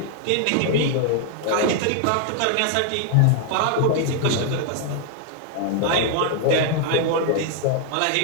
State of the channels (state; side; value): different; both; correlation 0.00